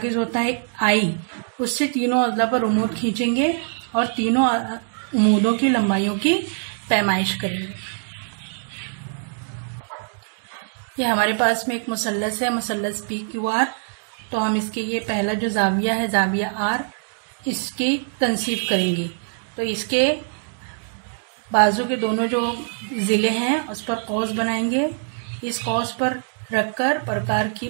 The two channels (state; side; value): silent; left; digital silence